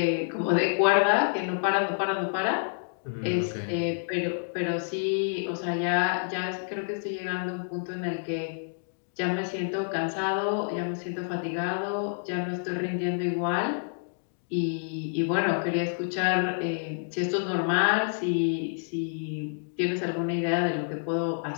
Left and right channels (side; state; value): right; silent; digital silence